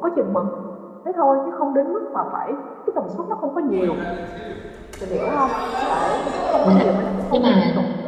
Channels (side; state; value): both; identical; correlation 1.00